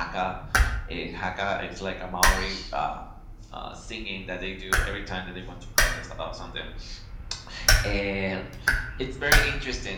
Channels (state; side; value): identical; both; correlation 1.00